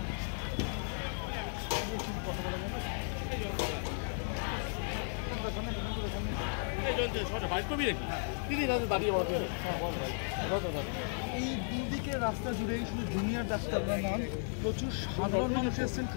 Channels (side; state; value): right; silent; 55 dB below the other